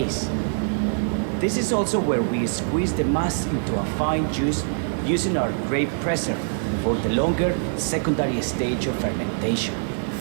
This is also where we squeeze the mass into a fine juice using our grape presser for the longer secondary stage of fermentation.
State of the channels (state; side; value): silent; left; digital silence